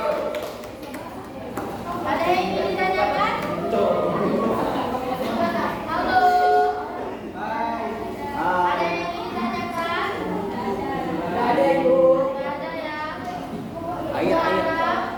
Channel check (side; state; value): both; identical; correlation 1.00